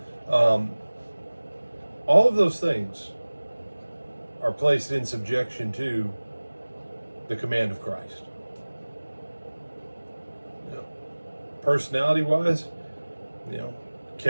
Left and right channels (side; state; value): both; inverted; correlation -1.00